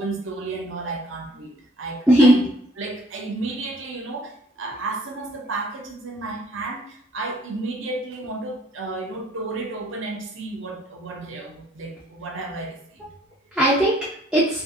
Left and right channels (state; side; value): normal; both; correlation 0.58